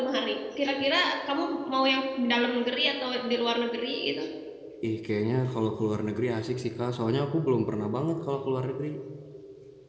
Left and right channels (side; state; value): both; identical; correlation 1.00